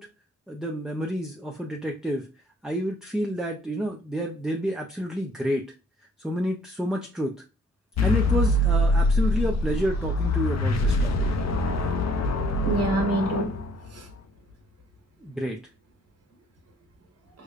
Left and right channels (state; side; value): normal; both; correlation 0.62